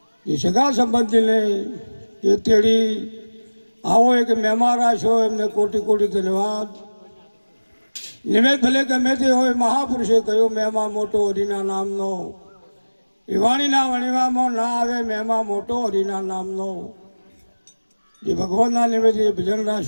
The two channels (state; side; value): inverted; both; correlation -1.00